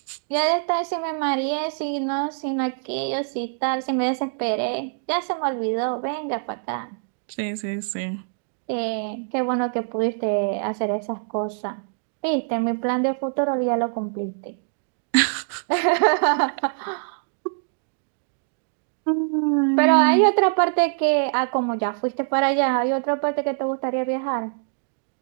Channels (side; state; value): left; silent; digital silence